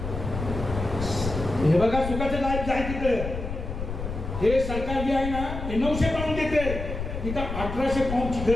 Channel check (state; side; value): noise; left; rumble, 6 dB below the sound